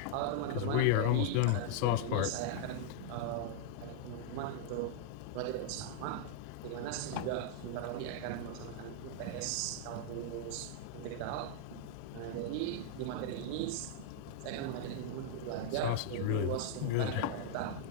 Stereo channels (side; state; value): both; different; correlation -0.01